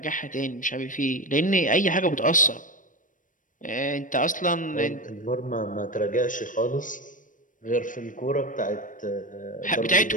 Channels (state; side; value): late; right; 0.38 ms